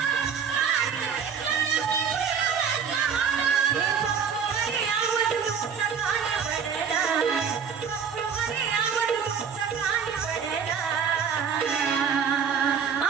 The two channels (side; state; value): left; quieter; 6.9 dB